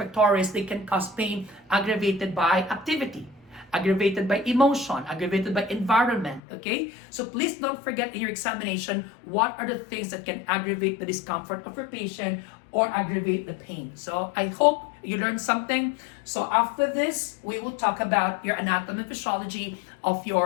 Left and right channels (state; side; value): drops out; right; at 6.4 s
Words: they can cause pain aggravated by activity, aggravated by emotion, aggravated by environment, okay? So please don't forget in your examination, what are the things that can aggravate the discomfort of your patient or aggravate the pain. So I hope you learned something. So after this, we will talk about your anatomy and physiology of